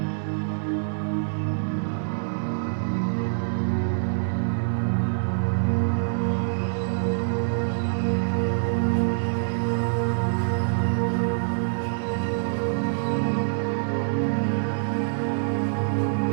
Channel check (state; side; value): silent; left; 62 dB below the other